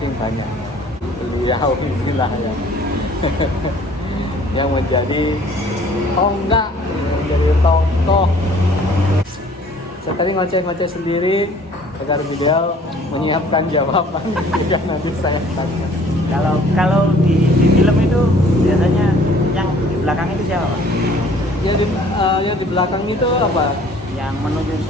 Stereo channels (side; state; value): both; normal; correlation 0.54